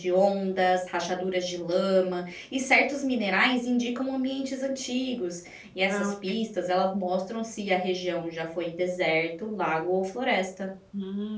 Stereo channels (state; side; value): identical; both; correlation 1.00